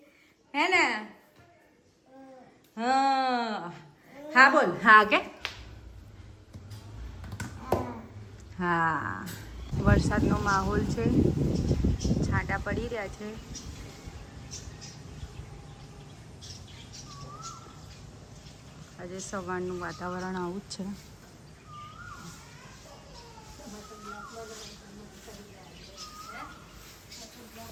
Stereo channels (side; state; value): both; identical; correlation 1.00